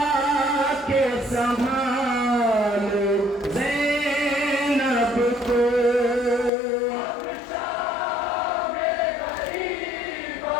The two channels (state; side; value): drops out; right; at 6.5 s